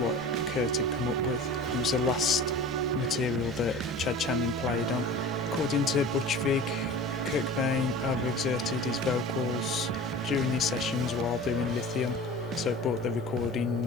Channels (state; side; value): normal; both; correlation 0.38